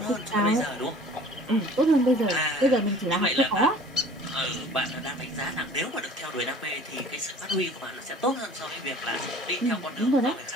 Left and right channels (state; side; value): normal; both; correlation 0.48